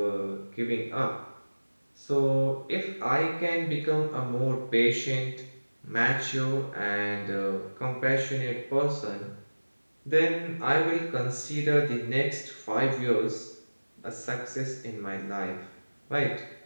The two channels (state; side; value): inverted; both; correlation -1.00